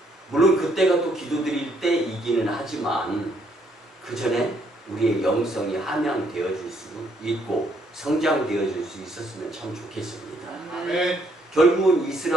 물론 그때가 또 기도드릴 때이기는 하지만 그 전에 우리의 영성이 함양되어질 수 있고 성장되어질 수 있었으면 참 좋겠습니다. 네. 결국은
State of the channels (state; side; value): normal; both; correlation 0.70